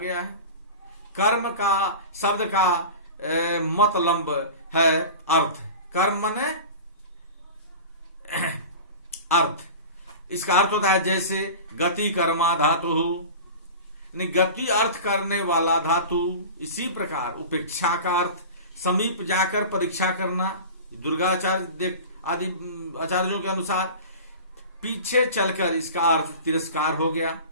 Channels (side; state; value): both; inverted; correlation -0.34